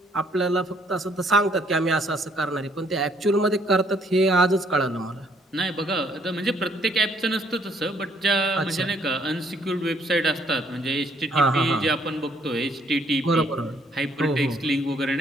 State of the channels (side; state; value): both; normal; correlation 0.66